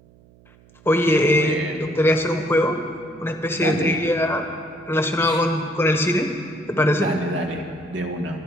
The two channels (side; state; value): right; noise; hum, 28 dB below the sound